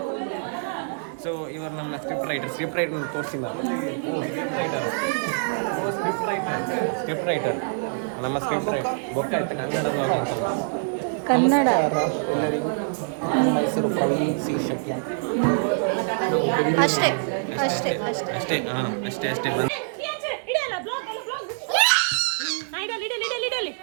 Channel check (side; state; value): left; silent; digital silence